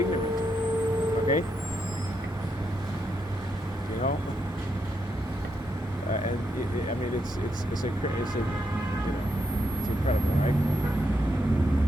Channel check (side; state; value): both; normal; correlation 0.81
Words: okay? You know? And I mean, it's incredible, right?